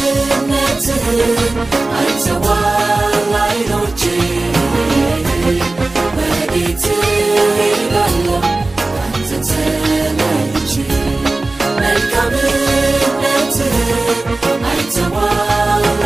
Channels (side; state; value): left; quieter; 3.1 dB